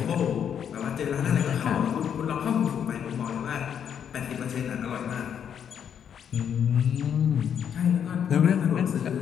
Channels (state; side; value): quieter; right; 8.4 dB